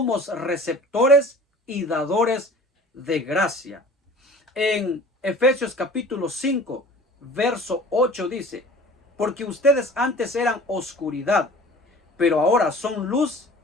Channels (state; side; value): normal; both; correlation 0.44